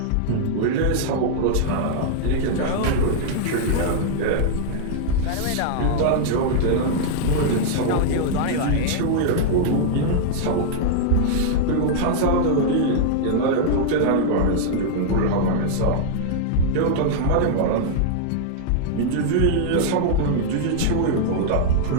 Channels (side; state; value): both; different; correlation -0.01